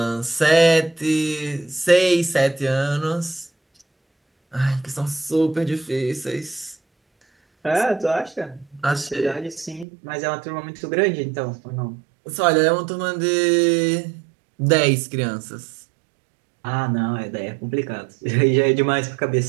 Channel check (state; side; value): drops out; left; at 9.9 s